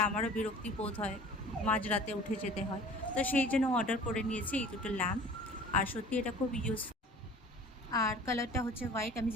আমারও বিরক্তি বোধ হয়, মাঝরাতে উঠে যেতে হয়। তো সেই জন্য অর্ডার করে নিয়েছি এই দুটো ল্যাম্প। আর সত্যি এটা খুব ইউজফুল। আর কালারটা হচ্ছে হোয়াইট, আমি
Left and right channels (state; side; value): normal; both; correlation 0.45